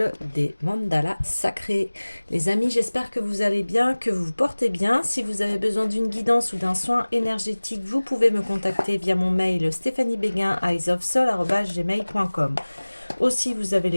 des mandalas sacrés. Les amis, j'espère que vous allez bien, que vous vous portez bien. Si vous avez besoin d'une guidance ou d'un soin énergétique, vous pouvez me contacter via mon mail stéphaniebeguin@eyesofsoul@gmail.com. Aussi, vous avez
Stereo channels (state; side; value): inverted; both; correlation -1.00